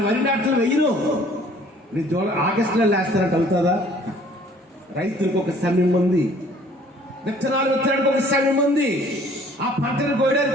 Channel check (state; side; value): normal; both; correlation 0.55